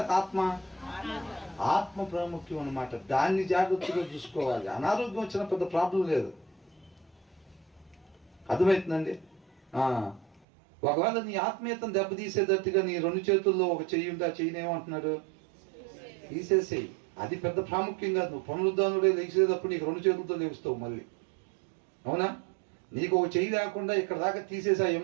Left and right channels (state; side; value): drops out; left; at 10.4 s